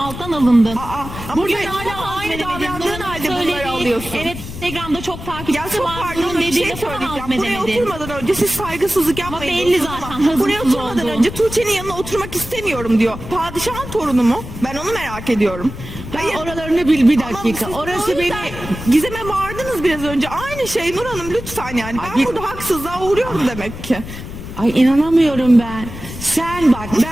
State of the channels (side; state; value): left; noise; rumble, 11 dB below the sound